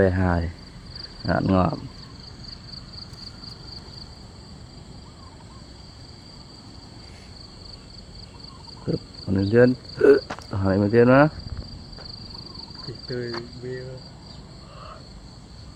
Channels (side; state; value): both; identical; correlation 1.00